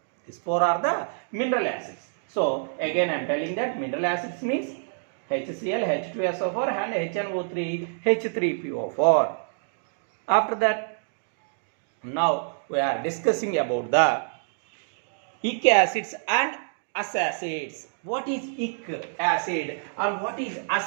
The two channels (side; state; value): left; silent; digital silence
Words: These four are the mineral acids. So again I am telling that mineral acids means HCl, H2SO4 and HNO3, H3PO4. After that, now we are discussing about the ic acids and us acids. What is ic acid and what is